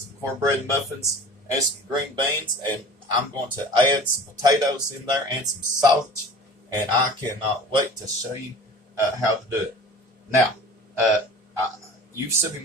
cornbread muffins, and some green beans, and I'm going to add some potatoes in there and some sausage, and I cannot wait to show you how to do it. Now, you've seen me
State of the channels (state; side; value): normal; both; correlation 0.41